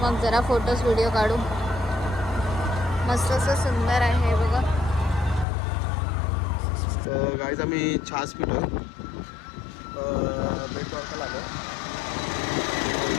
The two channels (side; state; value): right; drops out; at 5.5 s